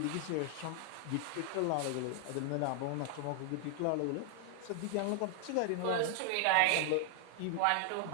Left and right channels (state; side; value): different; both; correlation 0.00